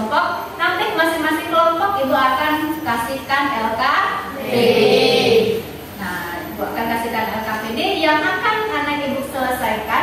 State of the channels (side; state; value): both; identical; correlation 1.00